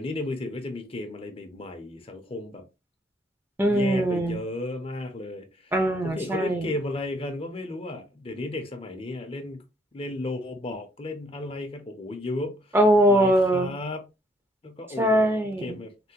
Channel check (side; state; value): both; normal; correlation 0.66